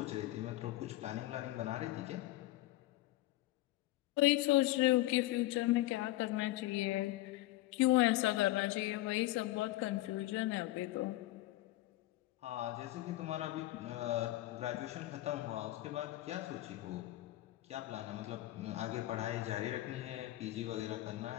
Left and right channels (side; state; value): right; quieter; 17.0 dB